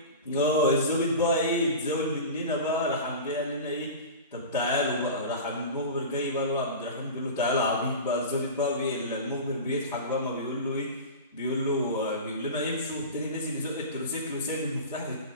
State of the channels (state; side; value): inverted; both; correlation -0.30